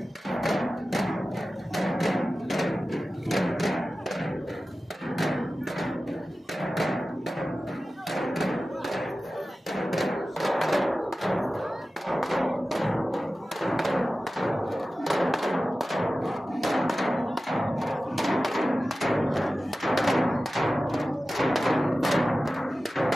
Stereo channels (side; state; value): both; normal; correlation 0.95